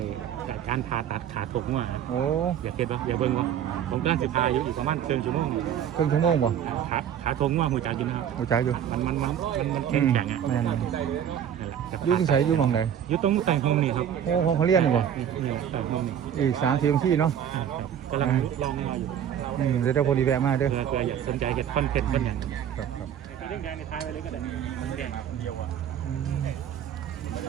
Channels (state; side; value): quieter; left; 9.4 dB